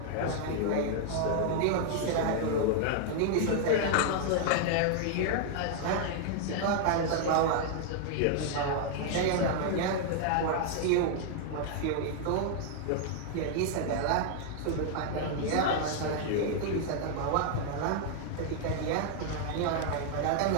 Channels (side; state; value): both; different; correlation 0.00